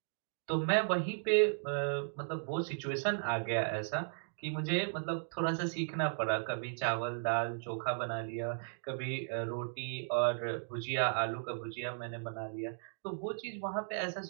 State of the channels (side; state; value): left; silent; digital silence